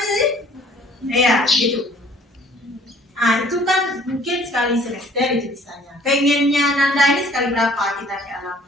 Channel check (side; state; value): both; normal; correlation 0.56